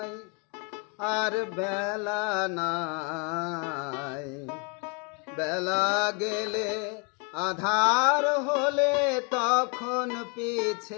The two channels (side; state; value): right; quieter; 34.5 dB